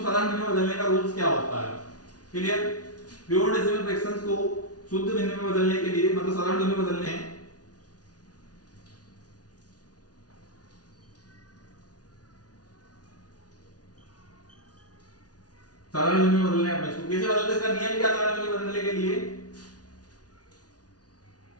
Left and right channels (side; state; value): right; late; 0.68 ms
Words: भिन्न में बदलने का रूल्स क्या होता है। क्लियर, प्योर डेसिमल फ्रैक्शंस को शुद्ध भिन्न में बदलने के लिए मतलब साधारण भिन्न में बदलने हैं, साधारण भिन्न में बदलने हैं। इसको कैसे बदलते हैं, इसका नियम क्या साधारण भिन्न में बदलने के लिए,